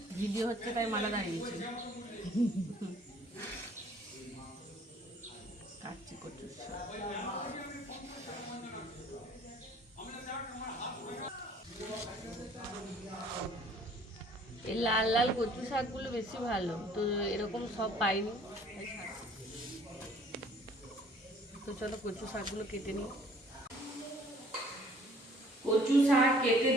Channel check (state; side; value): normal; both; correlation 0.56